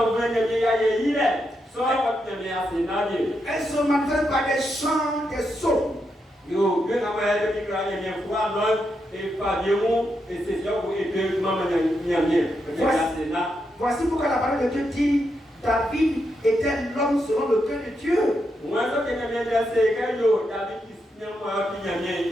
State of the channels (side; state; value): both; normal; correlation 0.83